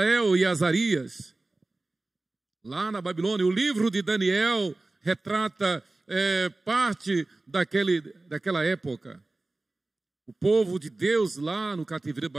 e Azarias. Lá na Babilônia, o livro de Daniel retrata parte daquela época. O povo de Deus lá no cativeiro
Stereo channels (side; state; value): left; quieter; 3.0 dB